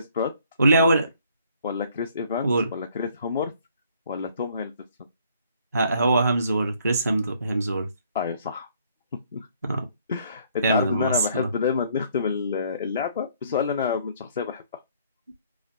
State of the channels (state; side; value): inverted; both; correlation -0.63